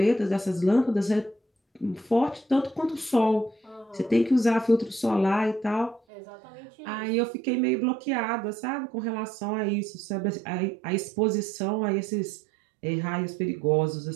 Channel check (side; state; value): left; drops out; at 6.0 s